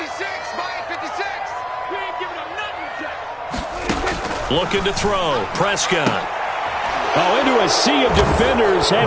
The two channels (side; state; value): both; identical; correlation 1.00